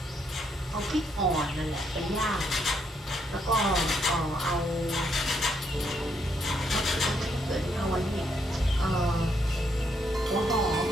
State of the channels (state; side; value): normal; both; correlation 0.75